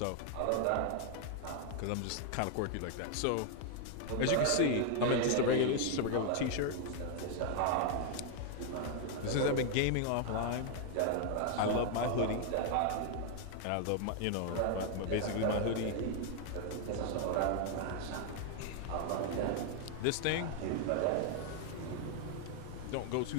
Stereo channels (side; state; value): both; different; correlation 0.00